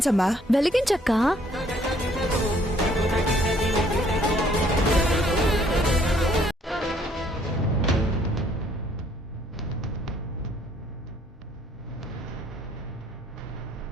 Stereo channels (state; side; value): normal; both; correlation 0.64